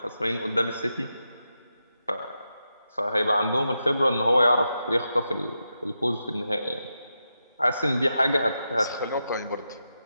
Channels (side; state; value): both; inverted; correlation -0.87